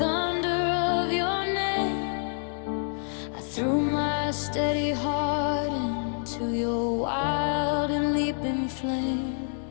of your name. I threw my steady heart into your wild and leaping flame.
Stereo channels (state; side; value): silent; right; digital silence